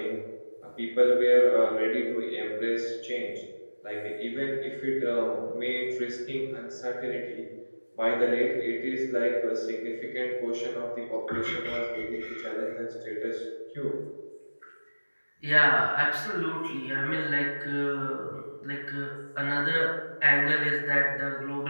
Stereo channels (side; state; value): both; inverted; correlation -1.00